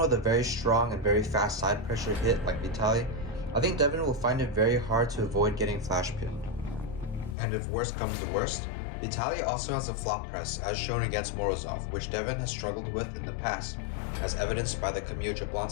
with a very strong and very fast side pressure hit like Vitaly, I think Devon will find it very hard to avoid getting flash pinned. And if worst comes to worst, Vitaly also has a flop press as shown against Morozov, which Devon has struggled with in the past, as evidenced by the Kamil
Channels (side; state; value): right; drops out; at 7.4 s